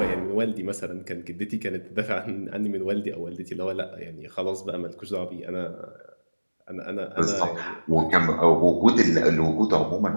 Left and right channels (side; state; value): both; inverted; correlation -1.00